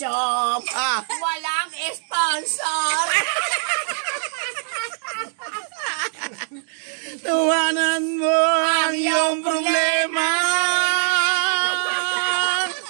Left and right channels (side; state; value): left; silent; 64 dB below the other